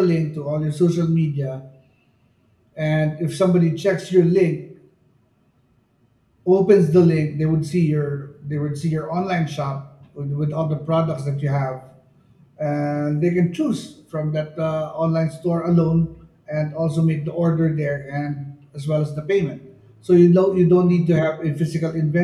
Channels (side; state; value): both; identical; correlation 1.00